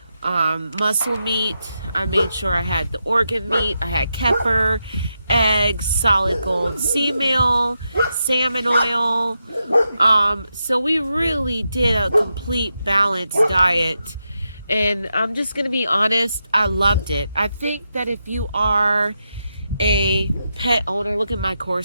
muscle meat, I made sure I had the organ meat. I had kefir, eggs, solid gold sea meal, salmon oil. So we really did a complete balanced diet. And I'm just going to be honest, I loved it. I think that if you are a pet owner, look at my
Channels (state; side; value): inverted; both; correlation -0.86